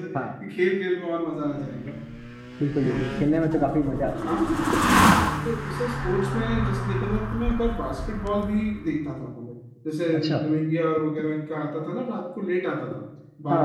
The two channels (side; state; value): both; identical; correlation 1.00